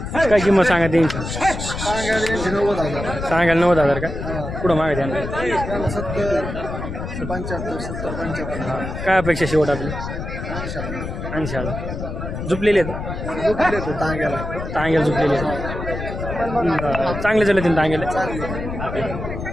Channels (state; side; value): noise; left; rumble, 6 dB below the sound